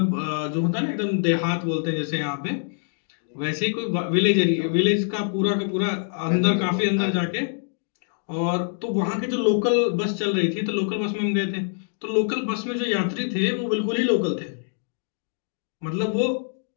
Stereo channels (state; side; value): silent; right; digital silence